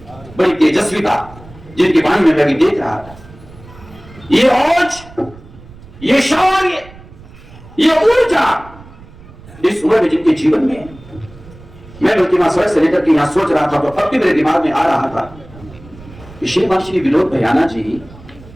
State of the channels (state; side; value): noise; right; rumble, 20 dB below the sound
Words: बड़ी तेजस्विता जिनकी वाणी में मैं भी देख रहा था, ये औज, ये शौर्य, ये ऊर्जा इस उम्र में जिनके जीवन में, मैं बल्कि वहां सड़क से लेकर के यहां सोच रहा था तो अब भी मेरे दिमाग में आ रहा था कि श्रीमान श्री विनोद भैयाना जी,